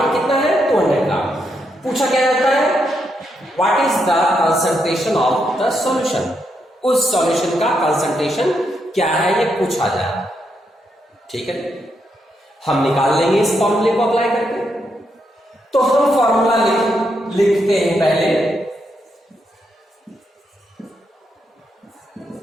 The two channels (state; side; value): normal; both; correlation 0.80